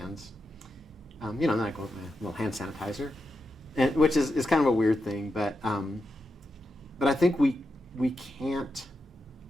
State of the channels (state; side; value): normal; both; correlation 0.87